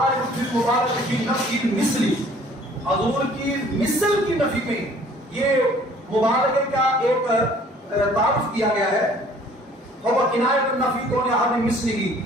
فی مبارک فی نفی مثلی حضور کی مثل کی نفی میں یہ مبارک کا ایک تعارف کیا گیا ہے اور کنایہ النفی کون احد مثلہ،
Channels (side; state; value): both; normal; correlation 0.54